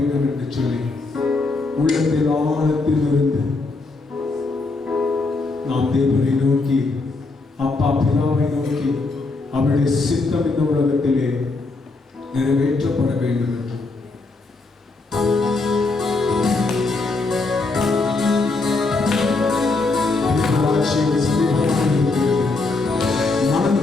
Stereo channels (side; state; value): right; quieter; 3.6 dB